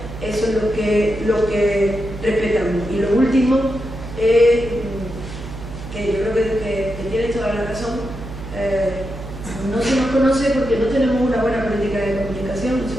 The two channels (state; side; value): noise; right; hum, 11 dB below the sound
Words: eso es lo que respetamos. Y lo último es que yo creo que tienes toda la razón. No se nos conoce porque no tenemos una buena política de comunicación.